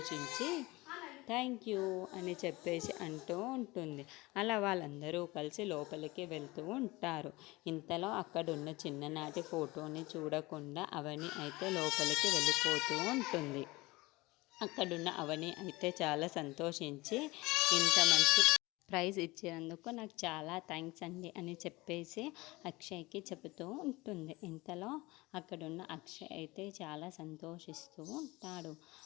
థ్యాంక్ యూ అని చెప్పేసి అంటూ ఉంటుంది. అలా వాళ్ళందరూ కలిసి లోపలికి వెళ్తూ ఉంటారు. ఇంతలో అక్కడున్న చిన్ననాటి ఫోటోని చూడకుండా అవని అయితే లోపలికి వెళ్ళిపోతూ ఉంటుంది. అక్కడున్న అవని అయితే చాలా సంతోషించి ఇంత మంచి ప్రైజ్ ఇచ్చినందుకు నాకు చాలా థ్యాంక్స్ అండి అని చెప్పేసి అక్షయ్కి చెబుతూ ఉంటుంది. ఇంతలో అక్కడున్న అక్షయ్ అయితే చాలా సంతోషిస్తూ ఉంటాడు.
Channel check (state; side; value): quieter; right; 21.9 dB